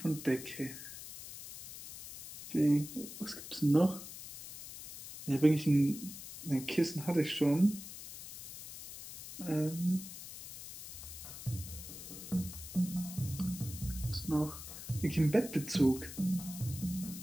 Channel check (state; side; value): noise; left; hiss, 12 dB below the sound